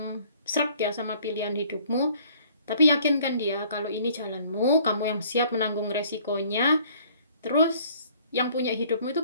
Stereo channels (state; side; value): inverted; both; correlation -0.57